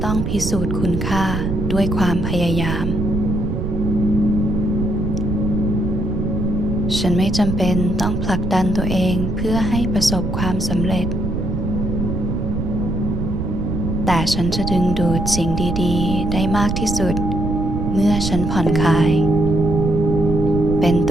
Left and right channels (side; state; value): right; noise; rumble, 2 dB below the sound